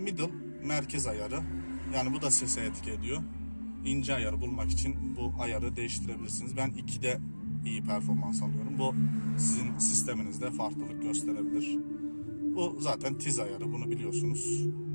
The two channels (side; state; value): both; inverted; correlation -1.00